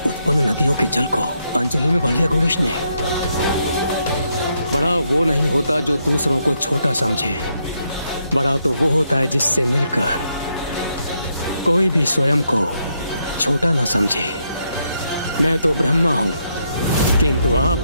उत्पन्न नदियों के जल को अंजलि में भर लिया गणेश ने। बड़ा वो नहीं होता जो दूसरों को छोटा समझे, बड़ा तो वो होता है जिससे मिलकर कोई भी स्वयं को छोटा न समझे। मैं तो ब्रह्मा हूँ, किंतु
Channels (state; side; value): inverted; both; correlation -0.78